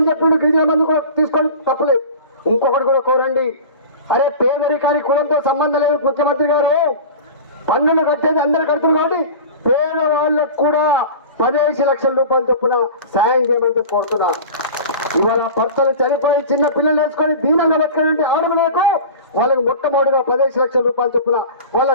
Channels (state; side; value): inverted; both; correlation -0.35